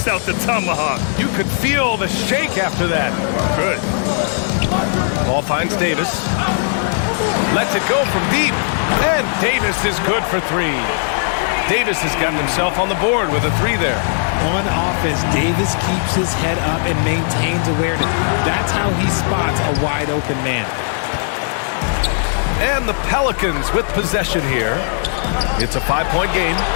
out the tomahawk. You could feel the shake after that. Good. Ball finds Davis. Lets it go from deep. And Davis is good for 3. Davis has gotten himself on the board with a 3 there. On offense, Davis keeps his head up and maintains awareness. That's how he spots a wide open man. And the Pelicans with possession here. It's a 5-point game.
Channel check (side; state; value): right; silent; 67 dB below the other